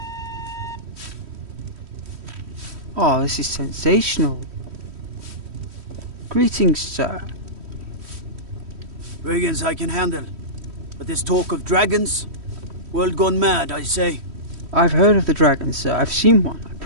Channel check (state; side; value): late; left; 3.1 ms